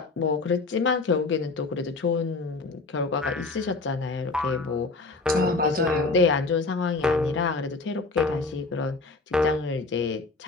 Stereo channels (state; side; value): quieter; right; 3.6 dB